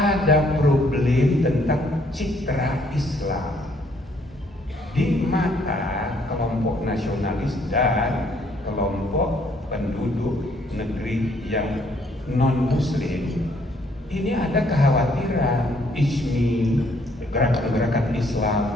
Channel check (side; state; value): both; normal; correlation 0.66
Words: problem tentang citra Islam di mata kelompok nasionalis dan kelompok penduduk negeri yang non-muslim. Ini ada kekhawatiran ICMI, gerakan-gerakan